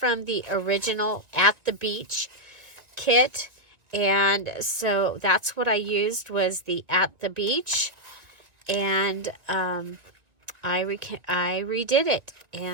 the original At the Beach kit. And so that's what I used, was the At the Beach. And I redid it.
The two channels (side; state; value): left; late; 1.8 ms